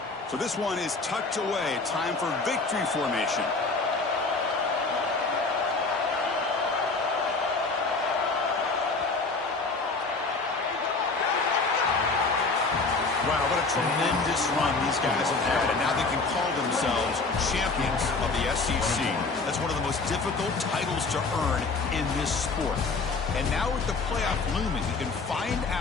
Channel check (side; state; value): right; quieter; 3.9 dB